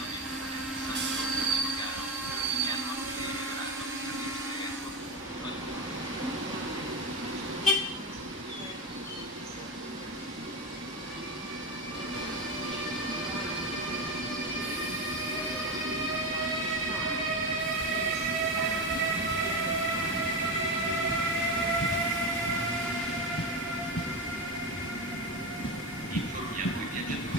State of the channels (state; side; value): normal; both; correlation 0.18